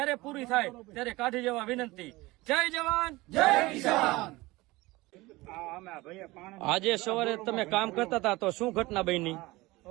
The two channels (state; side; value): quieter; left; 20.8 dB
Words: પૂરી થાય ત્યારે કાઢી જવા વિનંતી. જય જવાન જય કિસાન. આજે સવારે તમે કામ કરતા હતા તો શું ઘટના બની?